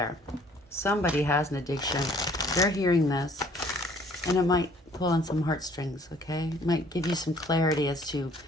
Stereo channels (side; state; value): both; normal; correlation 0.58